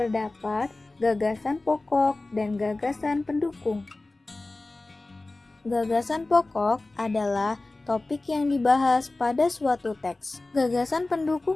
gagasan pokok dan gagasan pendukung. Gagasan pokok adalah topik yang dibahas pada suatu teks. Gagasan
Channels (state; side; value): quieter; right; 3.0 dB